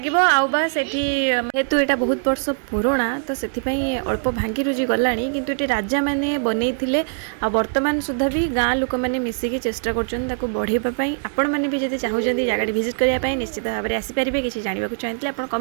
आबा से हेतु यहाँ बहुत वर्ष पुराणा तो से अल्प भांगी रुजी गला किंतु ये राजा मैंने बनई आ वर्तमान सुधा भी गाँ लोक मैंने मिसिकी चेष्टा कर बढ़ाई आपण मैंने भी जब चाहूँगी जगह विजिट करने निश्चित भाव में आसीपारे किसी जानवा चाहते आप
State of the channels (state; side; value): silent; left; digital silence